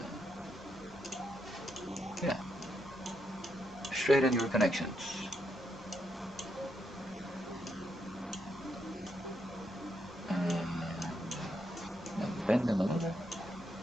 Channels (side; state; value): left; noise; hum, 25 dB below the sound